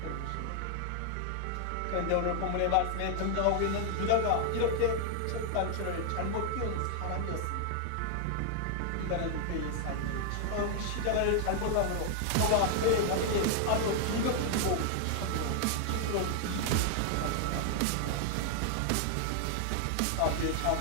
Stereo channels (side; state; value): both; different; correlation 0.00